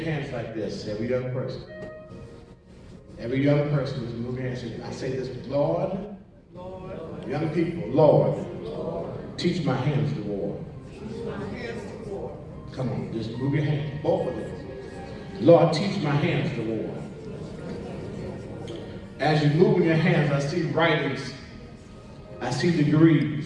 like this, every young person. Every young person is moving your hands. I say this, Lord, young people, Lord, teach my hands to war. Come on, just move your hands, both of them. Lord, teach my hands to war. As you're moving your hands, I see writings, I see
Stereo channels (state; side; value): identical; both; correlation 1.00